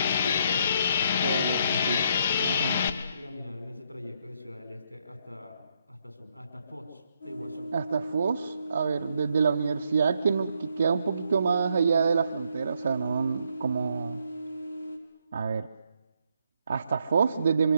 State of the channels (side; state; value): both; inverted; correlation -0.75